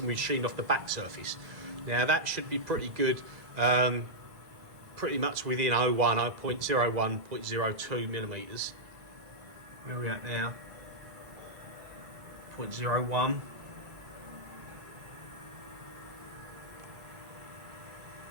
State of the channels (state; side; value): late; left; 1.8 ms